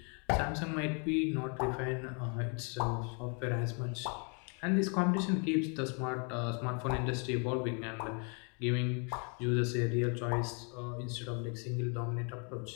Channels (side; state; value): right; quieter; 37.3 dB